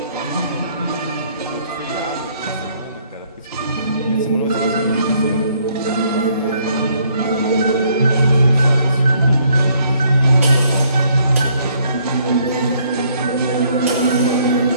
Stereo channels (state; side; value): inverted; both; correlation -0.66